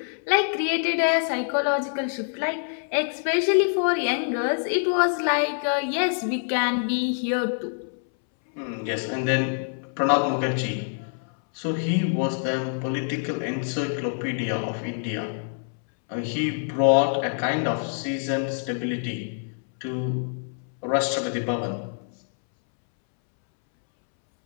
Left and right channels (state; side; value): silent; right; 61 dB below the other